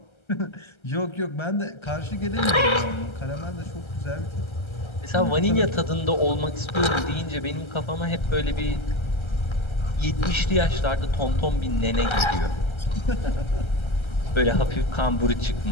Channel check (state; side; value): late; right; 1.3 ms